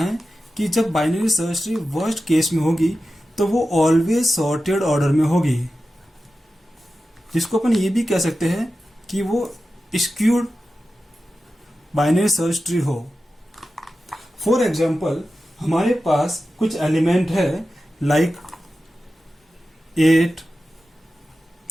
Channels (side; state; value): both; normal; correlation 0.93